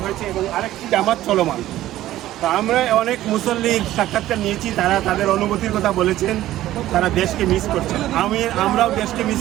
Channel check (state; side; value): quieter; left; 14.4 dB